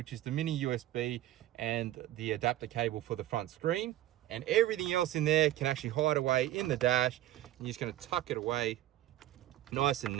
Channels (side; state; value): left; quieter; 14.2 dB